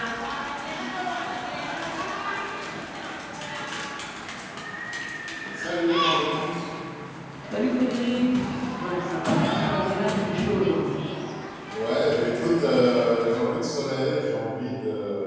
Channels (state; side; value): identical; both; correlation 1.00